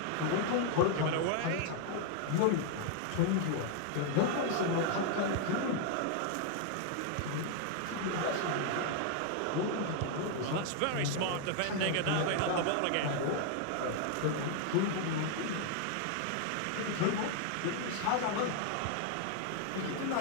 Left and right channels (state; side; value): different; both; correlation 0.00